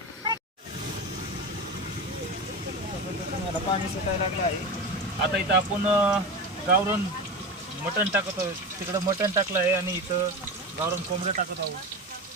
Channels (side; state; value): both; normal; correlation 0.24